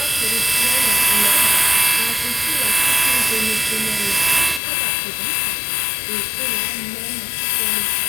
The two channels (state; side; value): drops out; right; at 4.6 s